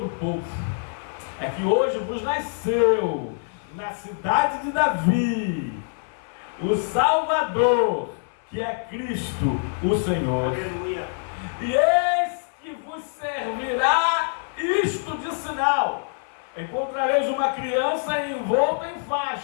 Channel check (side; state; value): right; silent; 57 dB below the other